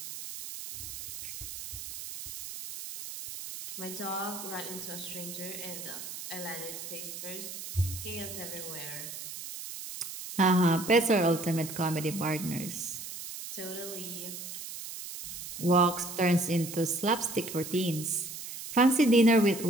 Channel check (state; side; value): noise; right; hiss, 9 dB below the sound